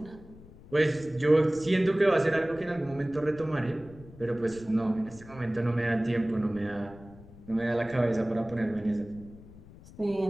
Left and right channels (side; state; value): left; noise; rumble, 20 dB below the sound